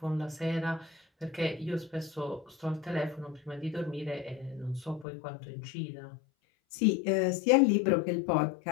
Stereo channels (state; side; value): drops out; right; at 5.1 s